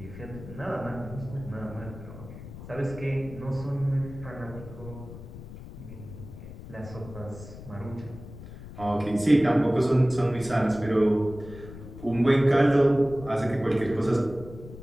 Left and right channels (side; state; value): left; noise; rumble, 14 dB below the sound